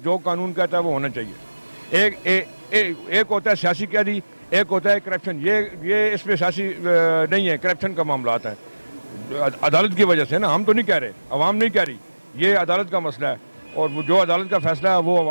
जो कानून कहता है वो होना चाहिए। एक होता है सियासी कैदी, एक होता है करप्शन। ये इसमें सियासी नहीं है, करप्शन का मामला आता है अदालत की वजह से ना। हम तो नहीं कह रहे, अवाम नहीं कह रही, ये अदालत का मसला है, और वो जो अदालत का फैसला है वो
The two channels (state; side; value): inverted; both; correlation -1.00